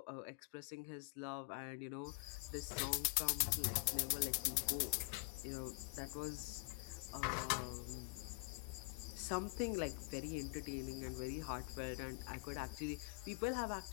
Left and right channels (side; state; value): right; quieter; 28.5 dB